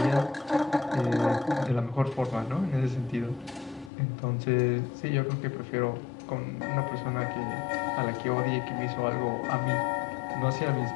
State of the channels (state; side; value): drops out; right; at 3.9 s